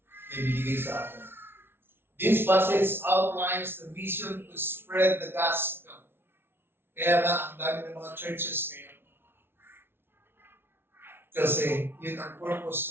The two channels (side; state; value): left; late; 0.11 ms